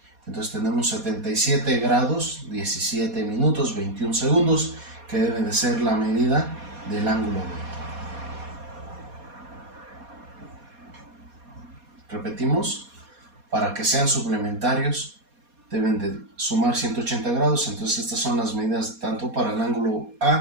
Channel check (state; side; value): late; left; 4.2 ms